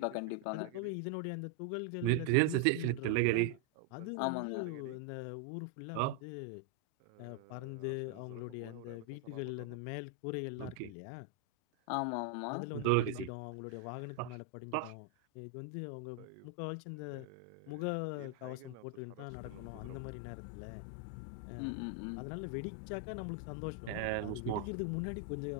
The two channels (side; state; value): both; different; correlation 0.00